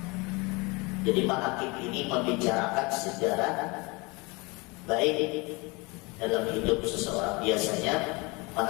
Jadi manaqib ini membicarakan sejarah baik dalam hidup seseorang. Biasanya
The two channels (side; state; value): right; quieter; 26.8 dB